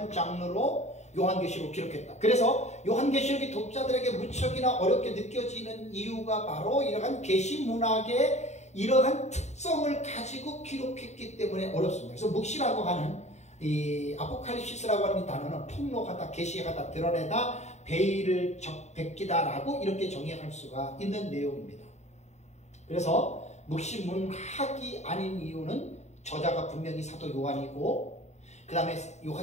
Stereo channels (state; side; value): late; right; 0.33 ms